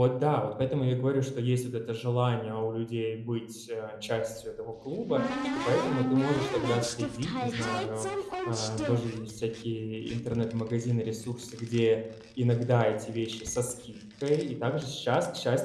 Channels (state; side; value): identical; both; correlation 1.00